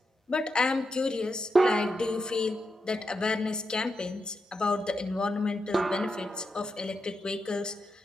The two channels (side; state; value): both; normal; correlation 0.86